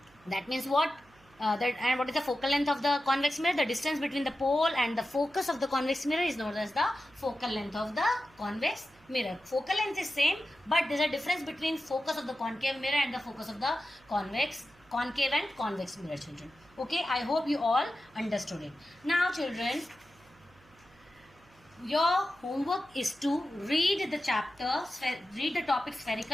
that means what? And what is the focal length of the convex mirror? The distance between the pole and the focus of the convex mirror is known as the focal length of the convex mirror. Focal length is same, but there is a difference between focus of the concave mirror and the focus of the concave and convex mirror, children. Okay, I hope you all understood it. Now, children, your homework is to read the chapter, read the topic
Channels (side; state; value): right; noise; hum, 28 dB below the sound